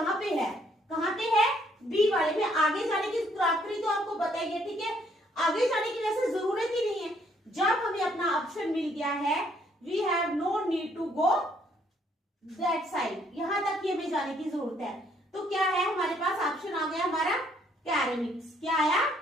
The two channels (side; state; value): both; normal; correlation 0.67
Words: पे है, कहाँ पे है, बी वाले में। आगे जाने की क्रॉकरी तो आपको बताइए, ठीक है, आगे जाने की वैसे जरूरत ही नहीं है। जब हमें अपना ऑप्शन मिल गया है, we have no need to go that side, यहां तक ही हमें जाने की जरूरत है। तो क्या है हमारे पास, ऑप्शन आ गया हमारा कैरेमिक्स। क्या आया,